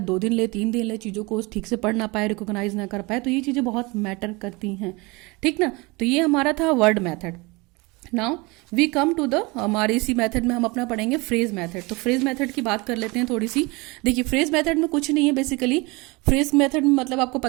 2 दिन ले, 3 दिन ले, चीज़ों को ठीक से पढ़ ना पाए, रिकॉग्नाइज ना कर पाए। तो ये चीज़ें बहुत मैटर करती हैं, ठीक ना। तो ये हमारा था word method. Now we come to the, हमारे इसी मेथड में हम अपना पढ़ेंगे फ्रेज मेथड। तो फ्रेज मेथड की बात कर लेते हैं थोड़ी सी। देखिए फ्रेज मेथड में कुछ नहीं है बेसिकली। फ्रेज मेथड में मतलब आपको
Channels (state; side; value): quieter; left; 25.5 dB